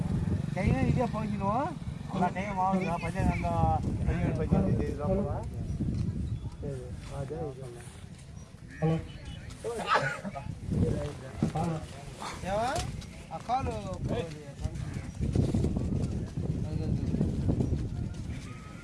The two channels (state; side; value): identical; both; correlation 1.00